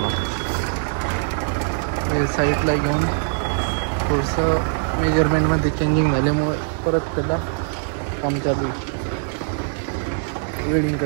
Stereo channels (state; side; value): silent; left; digital silence